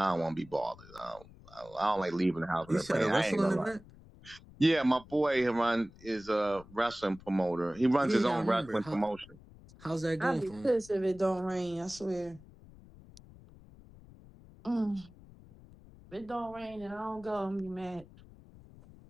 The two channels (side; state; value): left; noise; rumble, 21 dB below the sound